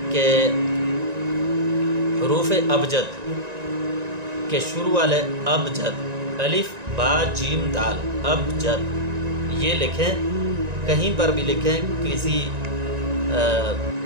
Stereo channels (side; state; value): left; late; 1.9 ms